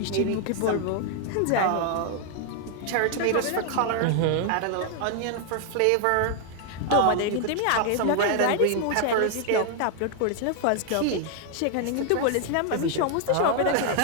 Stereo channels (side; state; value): both; different; correlation 0.00